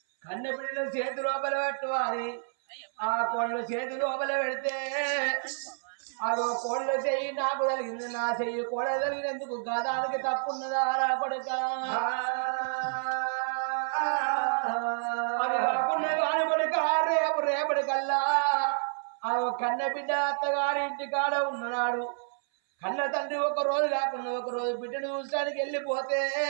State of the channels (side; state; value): left; silent; 58 dB below the other